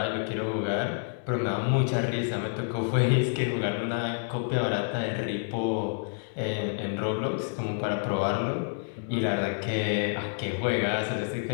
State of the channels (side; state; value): right; silent; digital silence